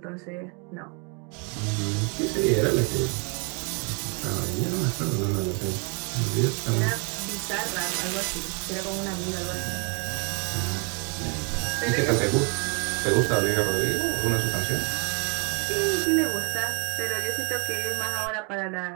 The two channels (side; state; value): left; quieter; 34.7 dB